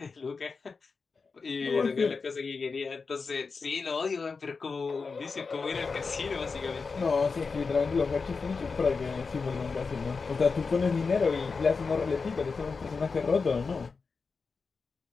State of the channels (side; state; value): right; quieter; 4.7 dB